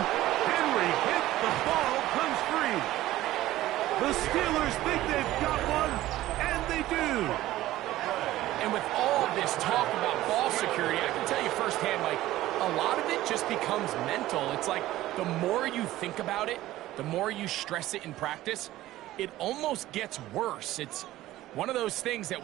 Henry hit, the ball comes free. The Steelers think they've got one, and they do. And with all this talk about ball security, I can tell you firsthand, Mike, a lot of it just becomes mental. It's like the more you think about it, the more you stress it in practice, it almost gets worse. It's one of those things that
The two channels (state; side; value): quieter; left; 15.5 dB